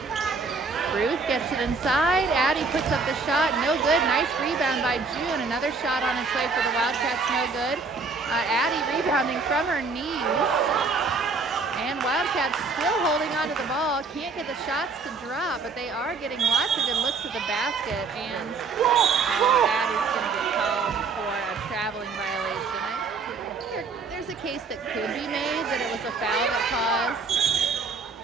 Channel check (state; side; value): quieter; left; 4.3 dB